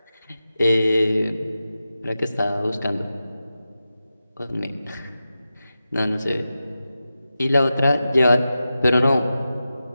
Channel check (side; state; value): both; inverted; correlation -0.92